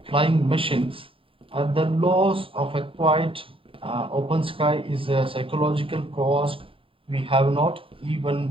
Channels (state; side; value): late; left; 0.26 ms